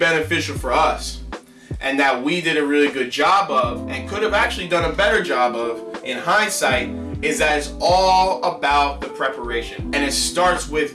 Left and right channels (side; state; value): both; identical; correlation 1.00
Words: for us, and that we did a really good job of, and could have actually done a better job of in hindsight, is that it's all about the preparation. And it starts